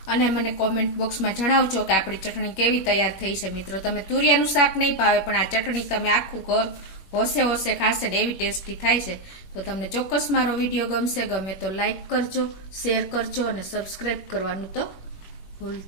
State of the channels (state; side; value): late; right; 21 ms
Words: અને મને કોમેન્ટ બોક્સમાં જણાવજો કે આપણી ચટણી કેવી તૈયાર થઈ છે. મિત્રો તમે તુરિયાનું શાક નહીં ભાવે પણ આ ચટણી તમે આખું ઘર હોશે ખાશે ને એવી ટેસ્ટી થાય છે. તો તમને ચોક્કસ મારો વિડીયો ગમે તો લાઈક કરજો, શેર કરજો અને સબસ્ક્રાઇબ કરવાનું તો